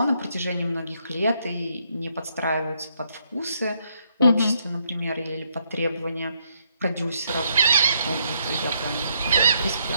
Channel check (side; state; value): both; inverted; correlation -0.73